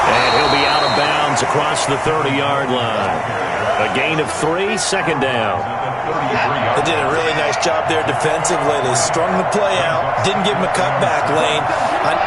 And he'll be out of bounds across the 30-yard line. A gain of 3, 2nd down. They did a really nice job there defensively. They strung the play out. Didn't give him a cutback lane. On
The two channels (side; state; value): both; identical; correlation 1.00